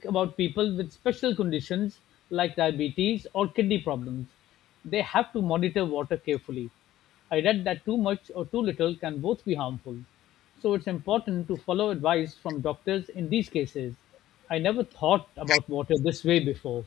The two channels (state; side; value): quieter; right; 14.0 dB